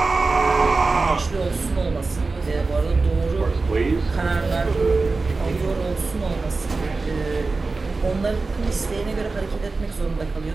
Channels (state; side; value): quieter; left; 3.8 dB